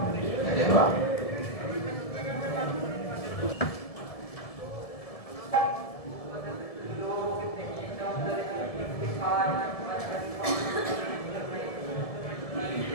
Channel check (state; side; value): late; right; 1.7 ms